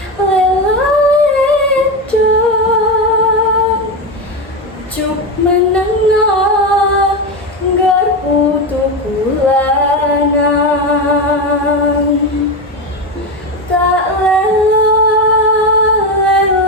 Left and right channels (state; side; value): normal; both; correlation 0.15